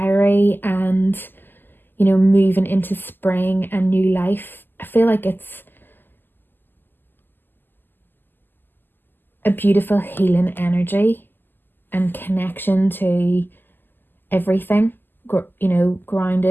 and, you know, moving into spring and new life. I feel like it's a beautiful healing energy and connection to everything, you know,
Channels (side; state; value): right; late; 0.092 ms